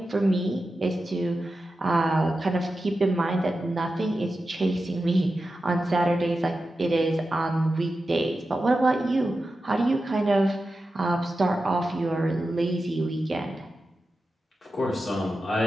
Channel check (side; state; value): both; normal; correlation 0.92